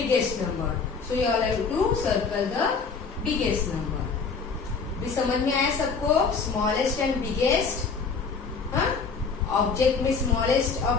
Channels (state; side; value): quieter; right; 5.1 dB